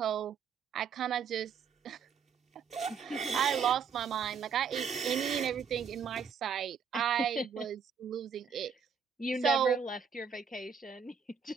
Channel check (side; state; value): left; quieter; 6.5 dB